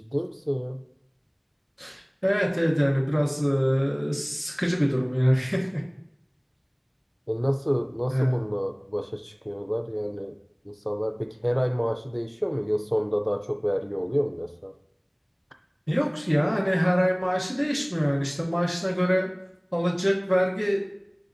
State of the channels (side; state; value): both; identical; correlation 1.00